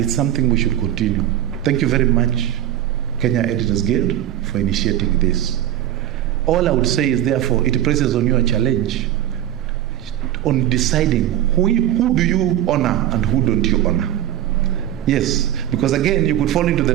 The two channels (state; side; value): quieter; left; 12.2 dB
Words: something we should continue. Thank you very much, Kenya Editors Guild, for initiating this. All I would say is, therefore, it places on you a challenge on deciding who do you honor and who don't you honor. Yes, because again, you could fall into the